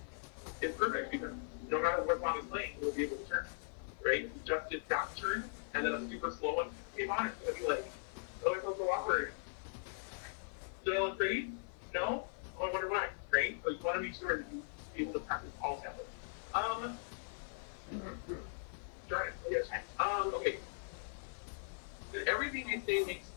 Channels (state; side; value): silent; right; 51 dB below the other